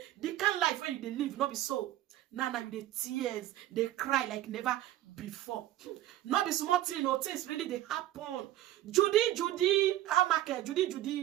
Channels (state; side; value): quieter; left; 14.3 dB